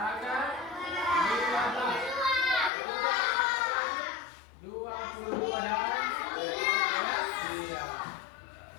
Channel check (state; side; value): drops out; right; at 2.7 s